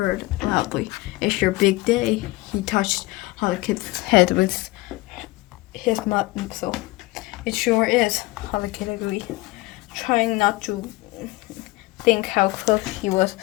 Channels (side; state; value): right; quieter; 20.5 dB